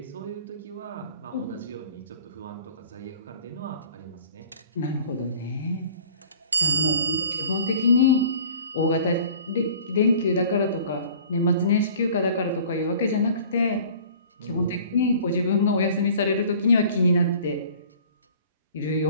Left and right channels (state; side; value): inverted; both; correlation -0.48